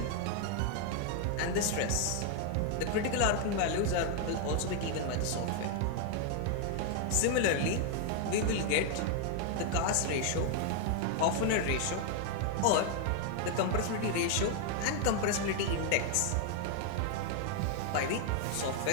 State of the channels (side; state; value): both; different; correlation 0.00